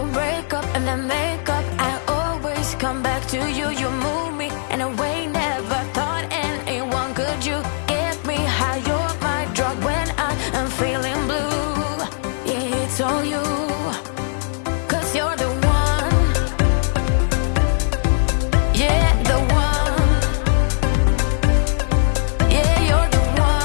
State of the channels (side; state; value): right; silent; 62 dB below the other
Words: break up and then make up. I always come back to you. You move me in a way never thought anyone could. You get me high. You're my drug when I'm feeling blue. Yeah, it's all you. 'Cause you're the one. Yeah, the one.